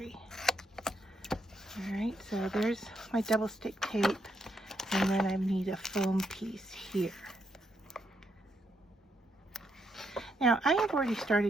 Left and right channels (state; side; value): normal; both; correlation 0.78